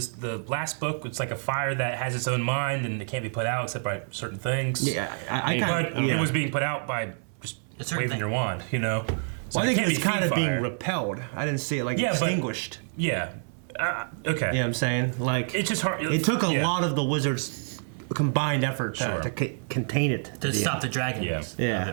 last book. It's like a fire that has its own mind and it can't be put out except by certain things. Yeah, I But kind of. it was being put out by just A certain waving thing. your wand. So Well, I it think can't it's be kind of Fiend being Fire. repelled. I didn't see it like Yeah, but- extinguished. Yeah. Okay. You know what I'm saying? Like It's just hard. it took a yeah. lot of the wizards' combined effort Sure. to contain it. To stop the dragons Yeah. Yeah. of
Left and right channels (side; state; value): left; silent; 60 dB below the other